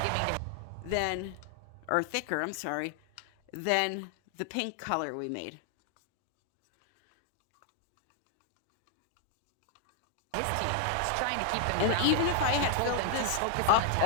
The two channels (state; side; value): different; both; correlation 0.00